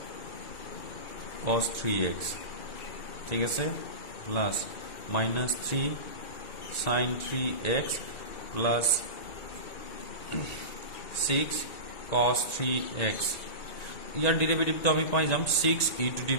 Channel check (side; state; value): right; late; 1.9 ms